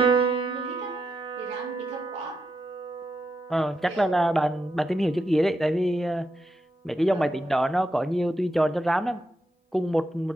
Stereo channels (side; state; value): both; normal; correlation 0.84